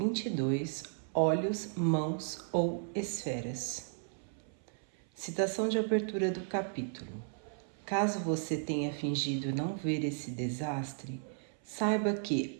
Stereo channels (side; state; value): left; silent; 55 dB below the other